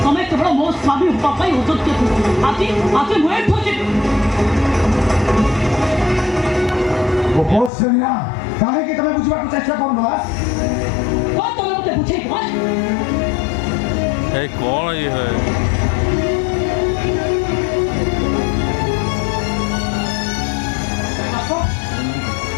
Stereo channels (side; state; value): right; drops out; at 7.7 s